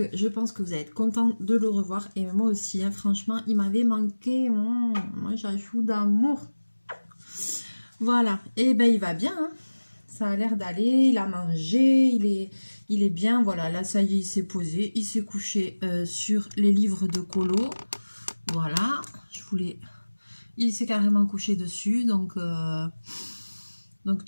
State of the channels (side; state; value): both; inverted; correlation -1.00